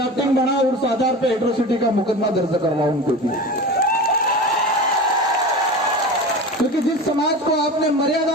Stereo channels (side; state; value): both; normal; correlation 0.31